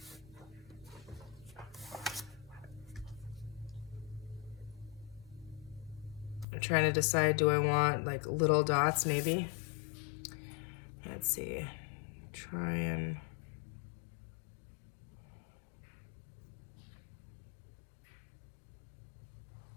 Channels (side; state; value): right; drops out; at 6.5 s